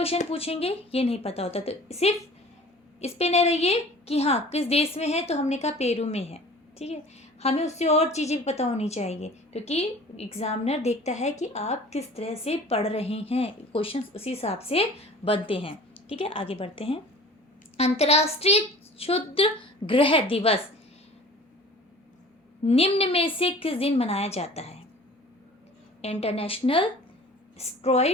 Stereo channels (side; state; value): both; normal; correlation 0.45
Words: पूछेंगे ये नहीं पता होता। तो सिर्फ इस पे न रहिए कि हाँ किस देश में है, तो हमने कहा पेरू में है। ठीक है, हमें उससे और चीज़ें भी पता होनी चाहिए, क्योंकि एग्जामिनर देखता है कि आप किस तरह से पढ़ रहे हैं, क्वेश्चंस उसी हिसाब से बनते हैं। ठीक है, आगे बढ़ते हैं। अंतर्राष्ट्रीय क्षुद्र ग्रह दिवस निम्न में से किस दिन मनाया जाता है। इंटरनेशनल